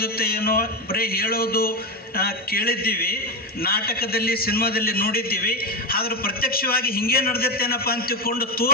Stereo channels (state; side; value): normal; both; correlation 0.15